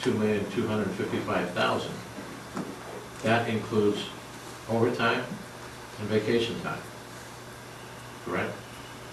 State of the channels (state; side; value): identical; both; correlation 1.00